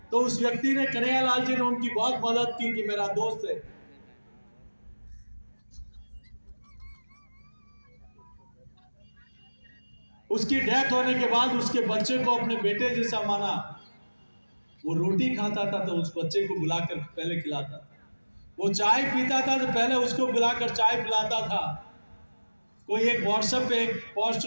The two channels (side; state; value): both; inverted; correlation -1.00